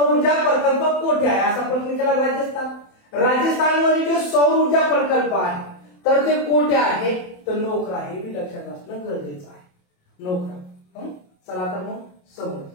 ऊर्जा प्रकल्प कुठे आहे असा प्रश्न केला. राजस्थान. राजस्थानमध्ये जो सौर ऊर्जा प्रकल्प आहे तर ते कुठे आहे? तर नोखरा. हे बी लक्षात असणं गरजेचं आहे. नोखरा. चला तर मग समोर.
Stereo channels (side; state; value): right; late; 27 ms